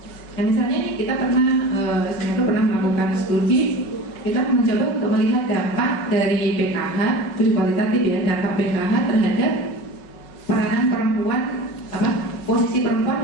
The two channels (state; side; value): late; right; 5.5 ms